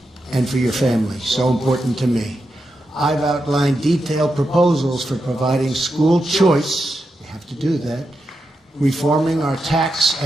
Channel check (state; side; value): normal; both; correlation 0.87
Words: and for your family, so important to me. I've outlined detailed proposals for providing school choice, we have to do that, reforming our tax